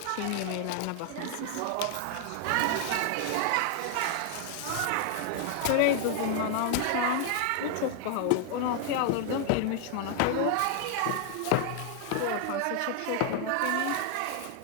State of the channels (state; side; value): different; both; correlation 0.00